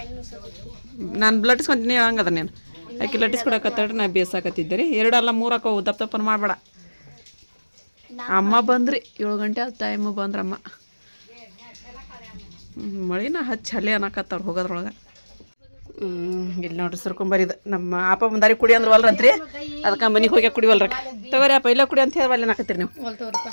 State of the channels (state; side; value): inverted; both; correlation -1.00